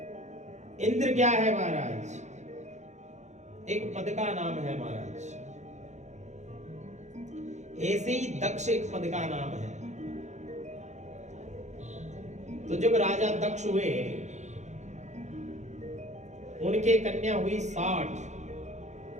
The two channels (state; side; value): late; left; 0.34 ms